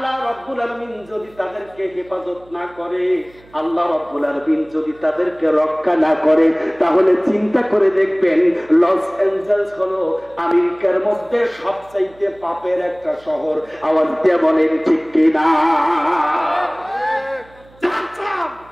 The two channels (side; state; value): right; noise; hum, 27 dB below the sound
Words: রাব্বুল আলামিন যদি তাদেরকে হেফাজত না করে, আল্লাহ রাব্বুল আলামিন যদি তাদেরকে রক্ষা না করে, তাহলে চিন্তা করে দেখবেন লস অ্যাঞ্জেলস হলো আমেরিকার মধ্যে সবচাইতে পাপের একটা শহর। আওয়াজ দিয়ে বলেন ঠিক কিনা?